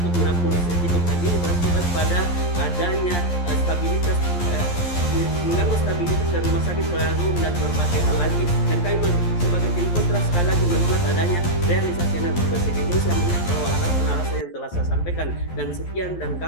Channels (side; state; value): right; late; 11 ms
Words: menampung listrik itu. Dan ini berakibat pada adanya stabilitas mengganggu stabilitas dari rumah sakit pelayanan dan berbagai hal lagi. Dan kami sebagai tim kontra sekali lagi menolak adanya realisasi energi bersih Indonesia mengingat bahwa alasan-alasan yang telah saya sampaikan. Dan sekian, dan